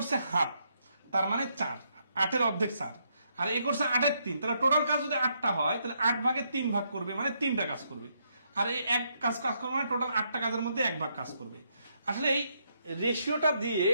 হাফ, তার মানে 4, 8-এর অর্ধেক 4, আর এ করছে 8/3, তাহলে টোটাল কাজ যদি 8টা হয় তাহলে 8 ভাগে 3 ভাগ করবে, মানে 3টা কাজ করবে। আর এই এক কাজ করবে মানে টোটাল 8টা কাজের মধ্যে 1 ভাগ কাজ করবে। আসলে এই রেশিওটা দিয়ে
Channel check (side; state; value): both; inverted; correlation -0.76